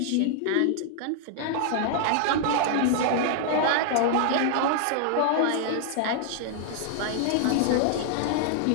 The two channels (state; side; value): different; both; correlation -0.01